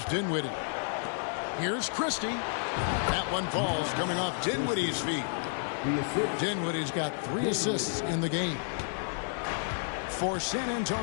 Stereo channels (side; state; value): right; silent; digital silence